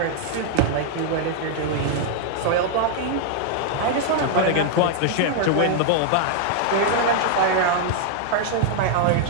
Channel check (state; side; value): different; both; correlation 0.00